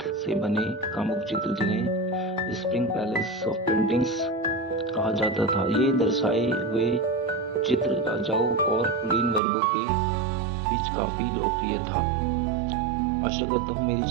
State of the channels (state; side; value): drops out; left; at 9.4 s